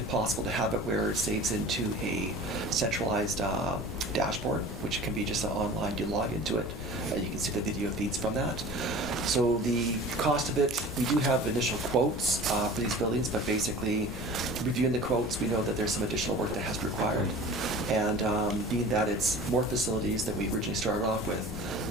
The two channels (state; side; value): normal; both; correlation 0.41